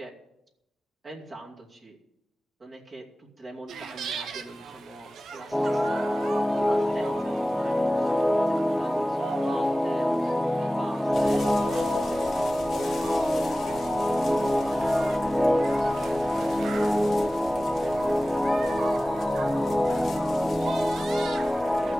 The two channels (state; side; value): normal; both; correlation 0.97